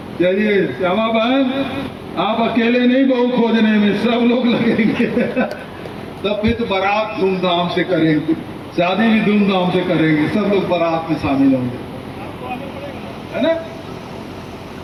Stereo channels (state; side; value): identical; both; correlation 1.00